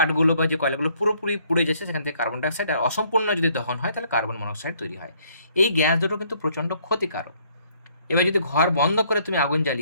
বা যে কয়লাগুলো পুরোপুরি পুড়ে যাচ্ছে সেখান থেকে কার্বন ডাইঅক্সাইড, আর অসম্পূর্ণ যদি দহন হয় তাহলে কার্বন মনোক্সাইড তৈরি হয়। এই গ্যাস দুটো কিন্তু প্রচণ্ড ক্ষতিকারক। এবার যদি ঘর বন্ধ করে তুমি আগুন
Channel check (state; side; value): inverted; both; correlation -0.65